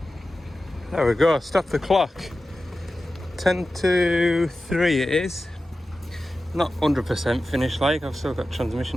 There we go, stop the clock. 10 to 3 it is. Not 100% finished like, I've still got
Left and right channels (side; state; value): both; normal; correlation 0.94